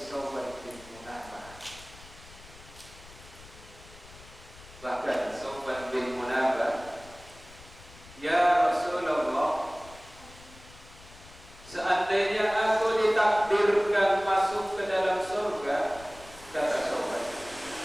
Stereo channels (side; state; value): left; noise; rumble, 20 dB below the sound